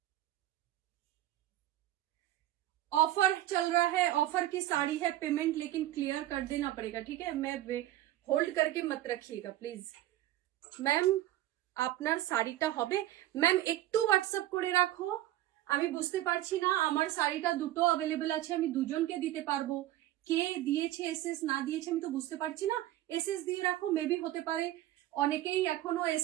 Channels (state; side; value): quieter; left; 14.4 dB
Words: ऑफर चल रहा है, ऑफर की साड़ी है, पेमेंट लेकिन क्लियर कर देना पड़ेगा। ठीक है, मैं होल्ड करके मत रखिएगा प्लीज। मैम আপনার শাড়িটা হবে? ম্যাম একটু হোয়াটসঅ্যাপ করে রাখো, আমি বুঝতে পারছি না। আমার শাড়িটা দুটো অ্যাভেলেবেল আছে, আমি দুজনকে দিতে পারবো। কে দিয়েছে এসএস না দিয়েছে আমি তো বুঝতে পারছি না। এসএস দিয়ে রাখো, মেবি হতে পারে অনেকেই এখনো